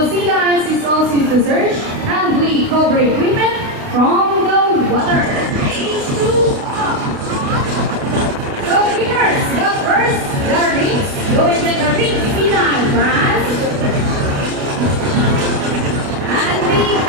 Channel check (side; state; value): left; late; 28 ms